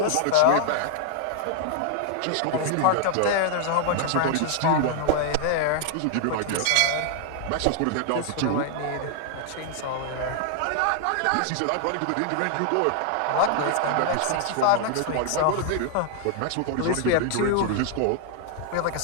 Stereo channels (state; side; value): different; both; correlation 0.00